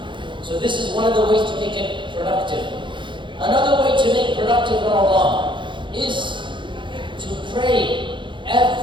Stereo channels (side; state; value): left; late; 0.23 ms